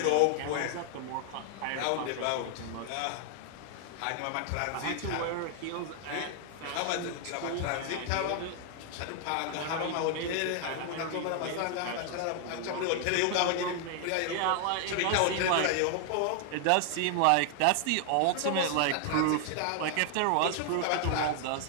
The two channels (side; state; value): both; different; correlation 0.00